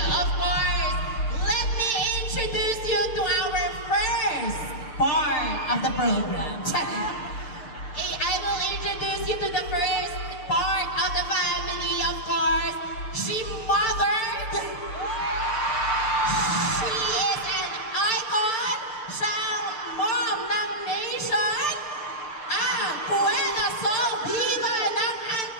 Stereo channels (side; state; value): right; late; 6.7 ms